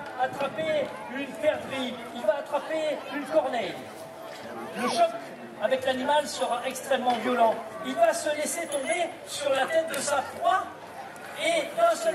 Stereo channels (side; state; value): both; identical; correlation 1.00